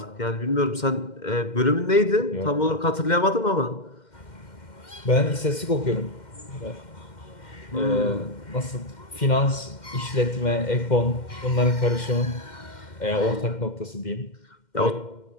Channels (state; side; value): late; right; 2.1 ms